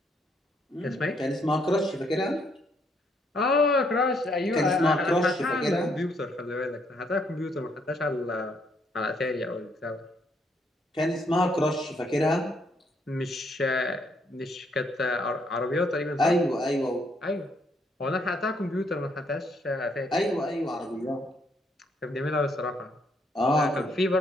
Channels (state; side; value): normal; both; correlation 0.71